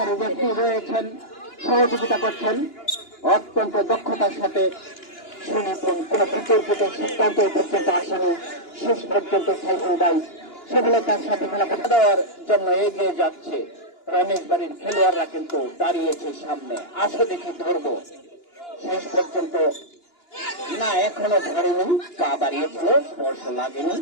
ব্যক্তি রয়েছেন, সহযোগিতা করছেন অত্যন্ত দক্ষতার সাথে। সুনিপুণ কোন বিতর্কিত সিদ্ধান্ত পর্যন্ত আসেনি, শেষ পর্যন্ত সাইফুল ভাই সফলতার সাথে খেলা দেওয়ার জন্য এগিয়ে যাচ্ছে। রমেশ বাড়ির খেলোয়াড়রা কিন্তু দাঁড়িয়েছে সামনে, আসো দেখি ধরবো। শেষ পর্যন্ত না, এখনো ধরেনি, পা বাড়িয়েছিল, স্পর্শ লাগেনি,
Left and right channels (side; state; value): right; late; 2.9 ms